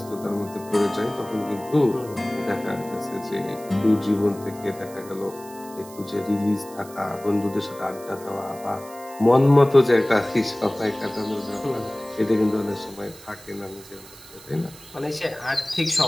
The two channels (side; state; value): right; noise; hiss, 19 dB below the sound